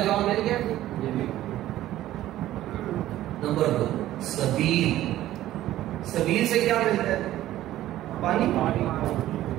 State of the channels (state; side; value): quieter; left; 14.1 dB